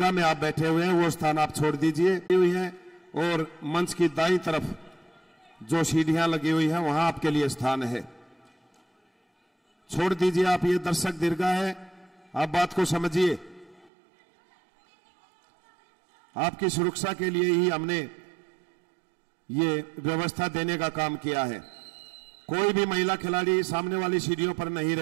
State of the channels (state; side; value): drops out; left; at 13.9 s